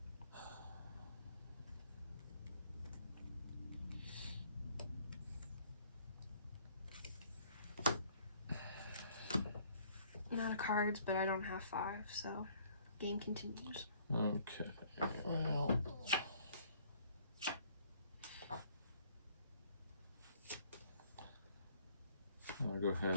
not a cards, but I don't have 5, so game continues. Okay. Well. I'll go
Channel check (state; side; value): inverted; both; correlation -0.55